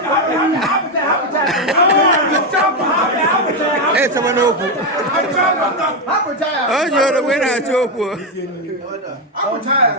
Hey, someone open. Oh, you're the winner, Choco. I'm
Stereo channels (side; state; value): both; normal; correlation 0.07